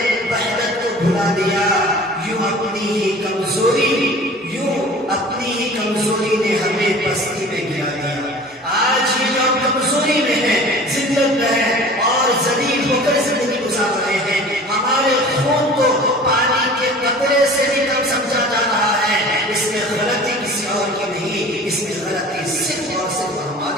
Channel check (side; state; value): both; normal; correlation 0.43